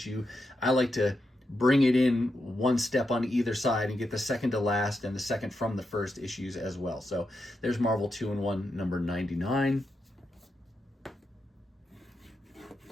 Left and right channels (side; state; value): both; normal; correlation 0.86